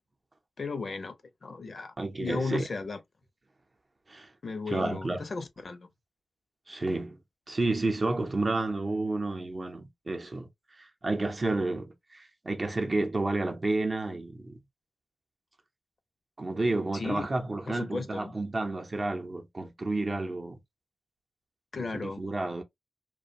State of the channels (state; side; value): normal; both; correlation 0.95